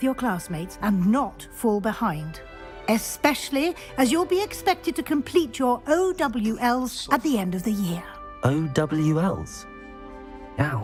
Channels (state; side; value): identical; both; correlation 1.00